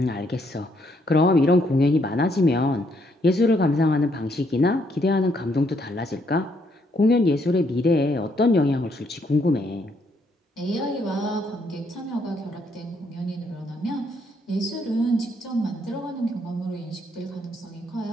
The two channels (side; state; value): both; normal; correlation 0.72